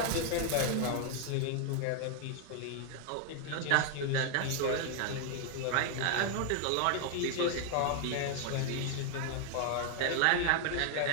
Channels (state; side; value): different; both; correlation 0.00